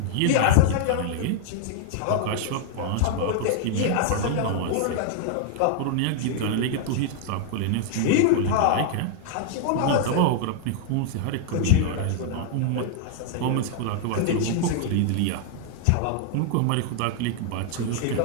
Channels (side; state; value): both; different; correlation 0.00